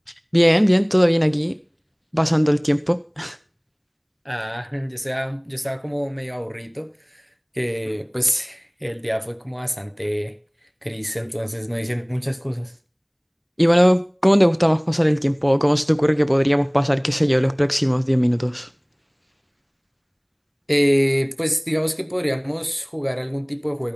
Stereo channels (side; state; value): both; identical; correlation 1.00